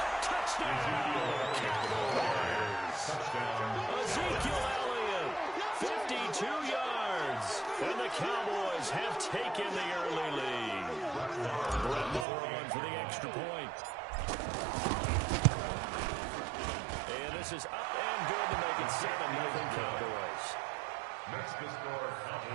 Touchdown, Cowboys. Ezekiel Elliott, 52 yards. And the Cowboys have taken the early lead. Brett Moore on for the extra point. And this is up and good to make it 7-0 Cowboys. Next to score,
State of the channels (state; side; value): drops out; left; at 12.2 s